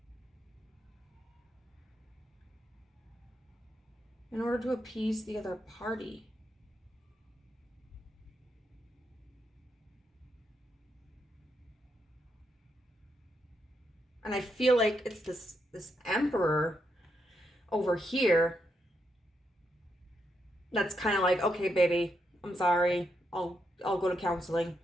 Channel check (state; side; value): normal; both; correlation 0.81